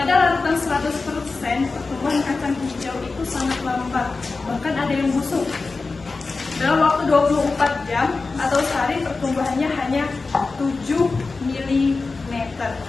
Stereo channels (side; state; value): right; quieter; 3.9 dB